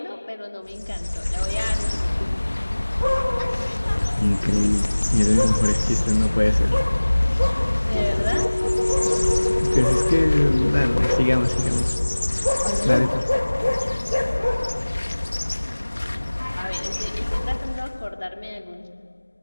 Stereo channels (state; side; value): inverted; both; correlation -1.00